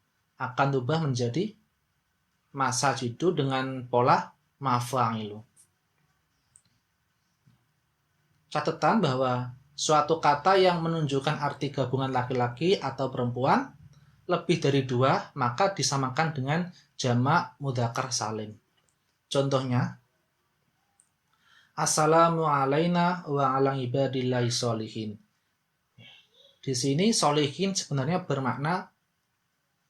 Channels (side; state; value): both; identical; correlation 1.00